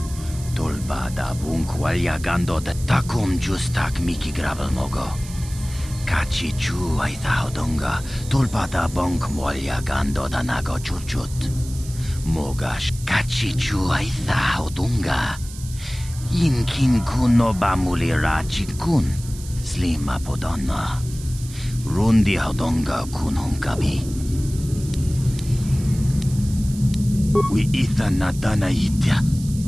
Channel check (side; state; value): right; noise; hiss, 16 dB below the sound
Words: Tolba da bung walyagando da takum justak miki grabal mogo. Kachi chu ay tahodonga tolba da bong walyagando da nago chuchut. Mogash kachi chu ay tahodonga. Yinkin kuno ba mulira chikun. Slima podonna. Rundi hodonga kunong gabi. We ita nadana itya.